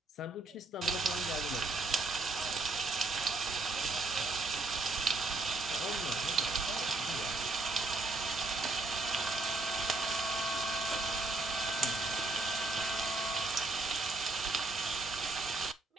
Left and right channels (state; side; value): quieter; left; 3.2 dB